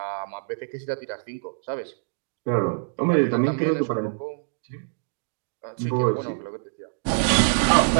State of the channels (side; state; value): left; silent; digital silence